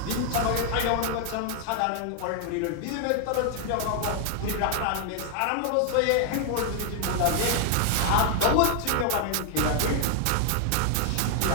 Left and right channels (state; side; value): different; both; correlation 0.00